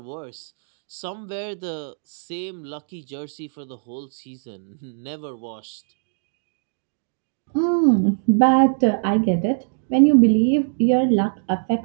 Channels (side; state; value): left; silent; digital silence